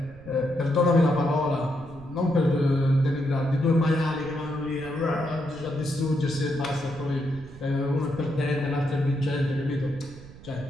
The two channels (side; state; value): right; noise; rumble, 18 dB below the sound